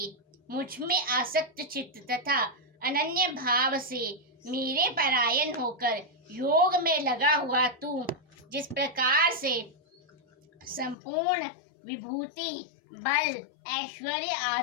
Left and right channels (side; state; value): right; drops out; at 11.0 s